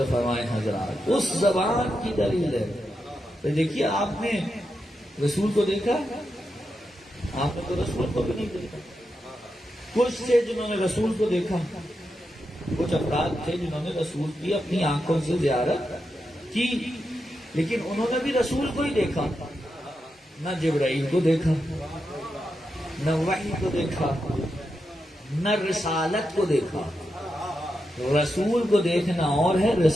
فرمائیں حضرات، اس زبان کی دلیل ہے۔ تو دیکھیے، آپ نے رسول کو دیکھا؟ آپ نے تو رسول کو بھی نہیں دیکھا۔ کچھ تھے جنہوں نے رسول کو دیکھا، کچھ افراد تھے جنہوں نے رسول کی اپنی آنکھوں سے زیارت کی، لیکن انہوں نے بھی رسول کو ہی دیکھا، نہ جبرائیل کو دیکھا، نہ وحی کو دیکھا، نہ رسالت کو دیکھا۔ رسول کو دیکھنا اور ہے،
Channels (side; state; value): both; normal; correlation 0.87